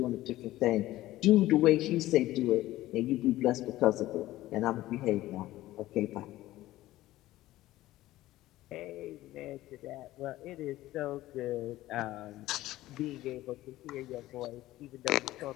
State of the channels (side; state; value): right; quieter; 16.0 dB